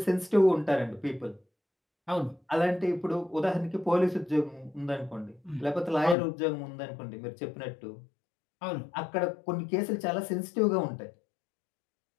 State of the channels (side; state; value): right; drops out; at 6.2 s